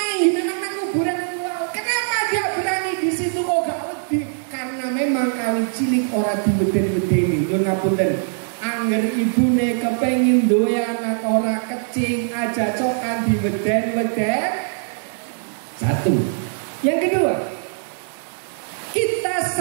nang kuburan wow. Kenapa dia berani di situ kok gak wedi? Karena memang kali cilik ora diweden-wedeni. Nyuwun ngapunten. Angger ibune kepengin duwe anak ora kecing aja cokan diweden-weden. Satu. Yang kedua, kita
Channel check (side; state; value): left; silent; digital silence